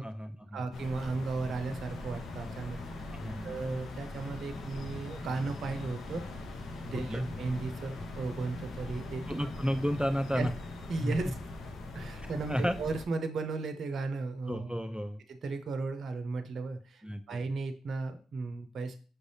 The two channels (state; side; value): normal; both; correlation 0.89